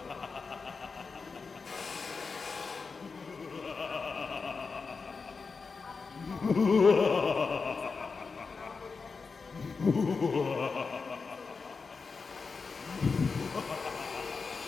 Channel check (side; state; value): right; quieter; 4.8 dB